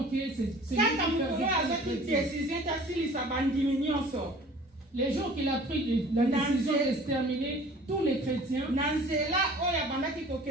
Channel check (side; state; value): both; normal; correlation 0.48